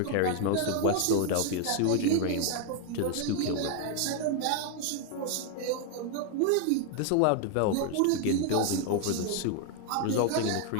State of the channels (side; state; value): both; different; correlation 0.01